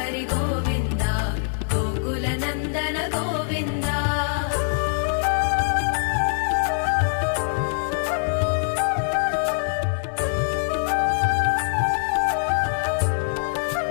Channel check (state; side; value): silent; right; digital silence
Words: గోవింద గోకుల నందన గోవింద